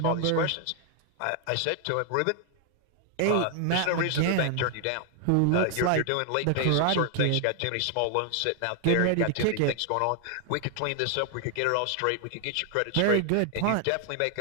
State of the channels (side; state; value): both; different; correlation 0.00